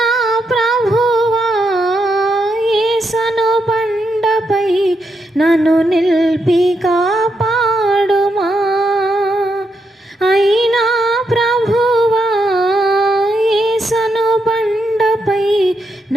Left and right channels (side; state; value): both; normal; correlation 0.81